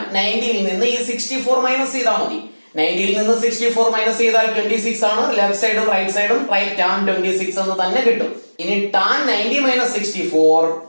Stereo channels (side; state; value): both; inverted; correlation -1.00